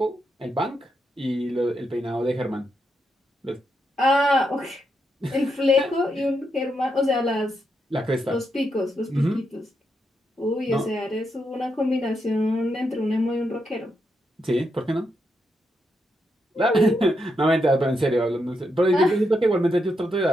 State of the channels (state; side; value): normal; both; correlation 0.82